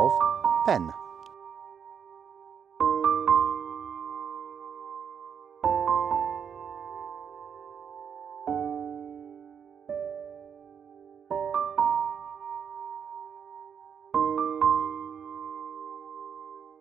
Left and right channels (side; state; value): left; quieter; 7.4 dB